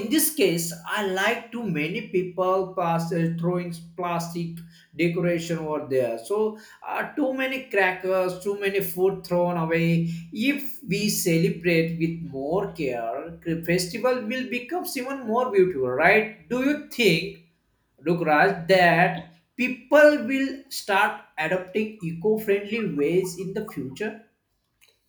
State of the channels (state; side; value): identical; both; correlation 1.00